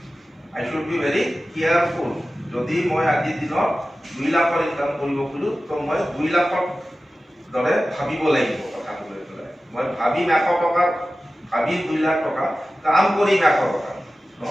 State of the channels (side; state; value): both; normal; correlation 0.95